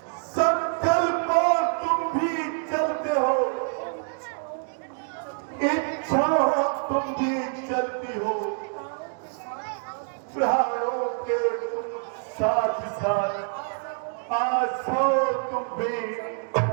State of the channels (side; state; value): left; silent; 61 dB below the other